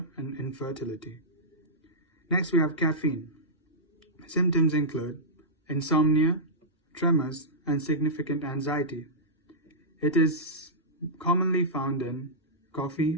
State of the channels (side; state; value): both; normal; correlation -0.13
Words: and infertility. Next, we have caffeine. Symptoms include insomnia, tremors, and significant anxiety. It is commonly found in